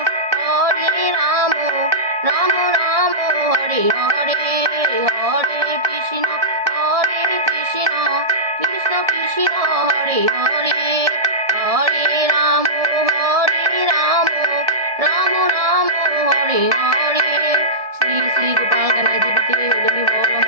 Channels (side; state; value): left; late; 1.7 ms